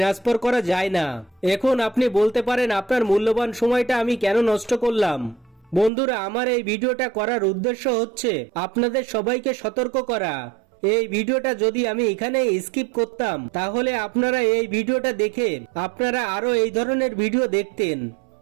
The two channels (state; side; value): drops out; left; at 5.9 s